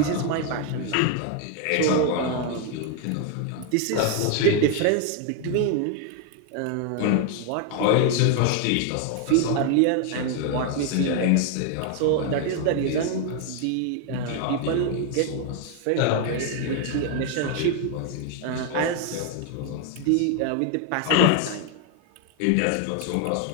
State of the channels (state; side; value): different; both; correlation 0.01